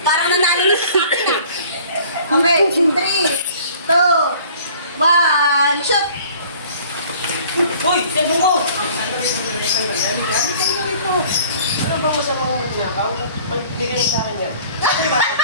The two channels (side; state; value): both; inverted; correlation -0.51